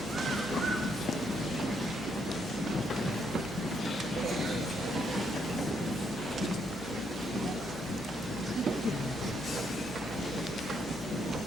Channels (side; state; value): both; normal; correlation 0.75